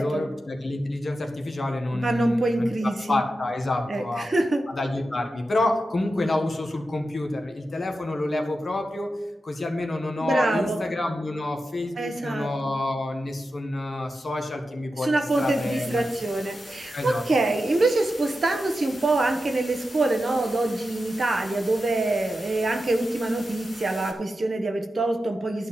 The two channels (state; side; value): normal; both; correlation 0.90